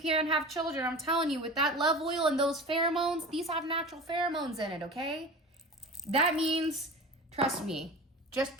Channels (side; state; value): both; normal; correlation 0.34